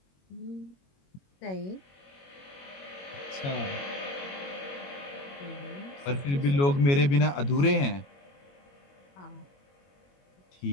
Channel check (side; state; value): right; late; 21 ms